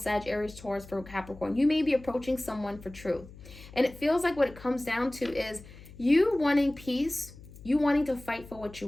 Aries, Taurus, Virgo, Capricorn. You may be approaching someone for truth. And it feels like what it comes down to is you wanting peace, you wanting to fight for what you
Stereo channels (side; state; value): left; noise; hum, 18 dB below the sound